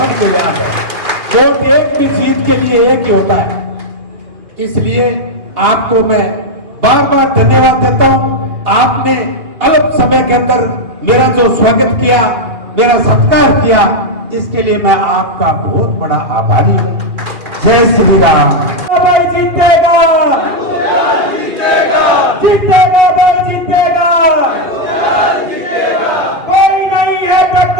याद है। वोट एक भी जीत के लिए एक ही होता है। इसलिए आपको मैं बार बार धन्यवाद देता हूं। आपने अल्प समय के अंदर मेरा जो स्वागत किया, मेरा सत्कार किया, इसके लिए मैं आपका बहुत बड़ा आभारी हूं। जय श्री राम। भाई जीतेगा, जीतेगा भाई जीतेगा, कोई नहीं है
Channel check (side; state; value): left; late; 2.3 ms